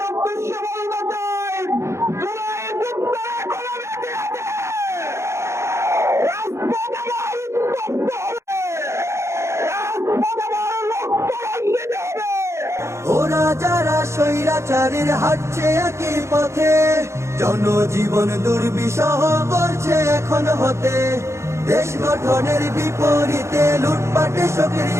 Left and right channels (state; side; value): late; left; 0.13 ms